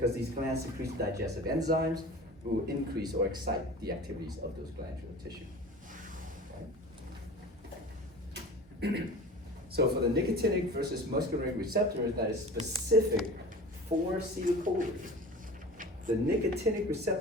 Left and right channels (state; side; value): normal; both; correlation 0.38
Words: these glands secrete digestive enzymes, will increase or excite the activities of those glandular tissue. Okay? So for the nicotinic versus muscarinic receptors that is specific for acetylcholine, the nicotinic